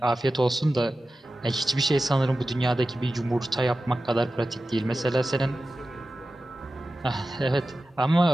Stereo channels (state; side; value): normal; both; correlation 0.94